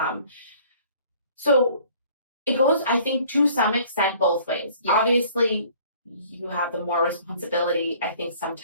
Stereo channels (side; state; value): both; inverted; correlation -0.54